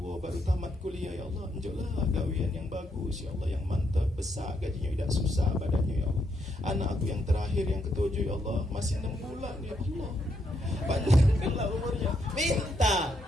baru tamat kuliah ya Allah, unjuklah gawian yang bagus ya Allah, yang mantap, besar gajinya, tidak susah badannya ya Allah. Anak aku yang terakhir yang ketujuh ya Allah, masih 6 bulan ya Allah, panjangkanlah umurnya.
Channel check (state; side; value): normal; both; correlation 0.77